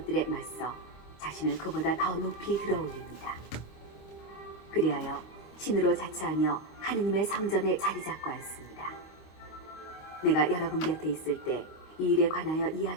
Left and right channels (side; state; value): right; late; 26 ms